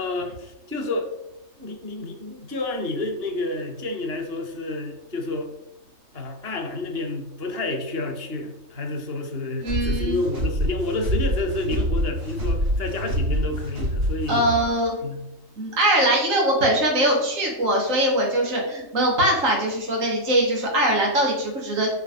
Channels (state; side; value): late; left; 3.3 ms